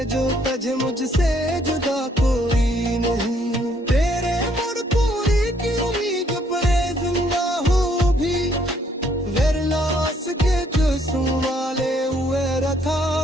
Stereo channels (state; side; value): normal; both; correlation 0.67